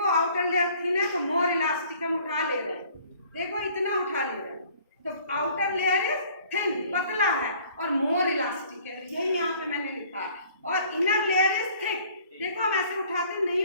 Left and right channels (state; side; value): inverted; both; correlation -0.55